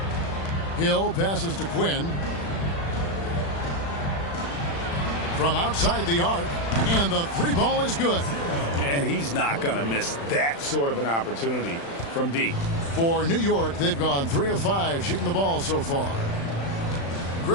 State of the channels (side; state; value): right; late; 35 ms